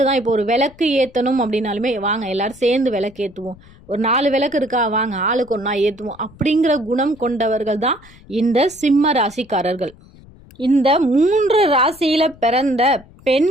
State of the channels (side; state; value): left; noise; rumble, 24 dB below the sound